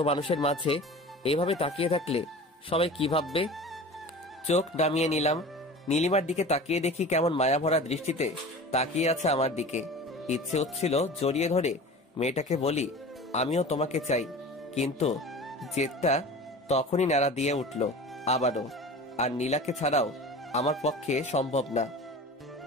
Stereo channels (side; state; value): both; normal; correlation 0.37